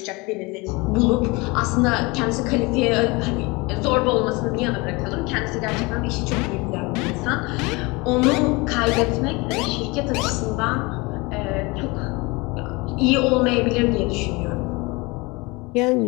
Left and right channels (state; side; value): quieter; right; 25.4 dB